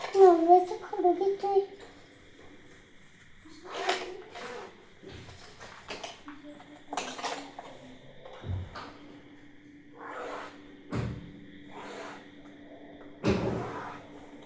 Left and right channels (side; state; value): both; identical; correlation 1.00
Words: नवऱ्याचं खडू घेतोय.